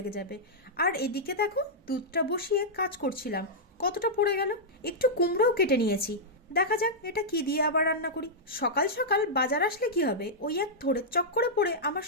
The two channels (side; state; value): both; normal; correlation -0.09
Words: যাবে। আর এদিকে দেখো, দুধটা বসিয়ে কাজ করছিলাম, কতটা পড়ে গেল। একটু কুমড়োও কেটে নিয়েছি। দেখা যাক এটা কি দিয়ে আবার রান্না করি। সকাল সকাল বাজার আসলে কি হবে, ওই এক থোড়ের চক্করে পড়ে আমার